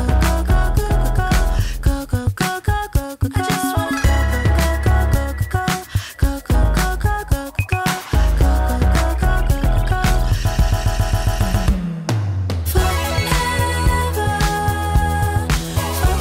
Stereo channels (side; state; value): both; identical; correlation 1.00